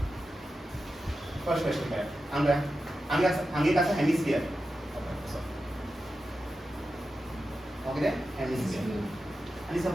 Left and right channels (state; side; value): normal; both; correlation 0.91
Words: first question काय हांगा कसं hemisphere okay hemisphere आणि